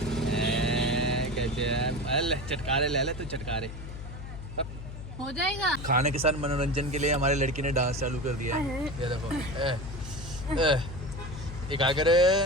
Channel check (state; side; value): noise; left; hum, 10 dB below the sound